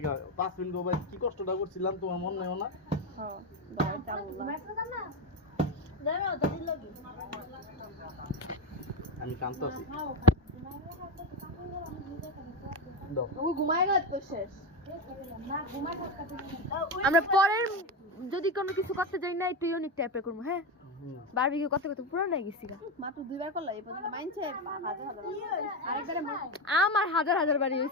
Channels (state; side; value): normal; both; correlation 0.15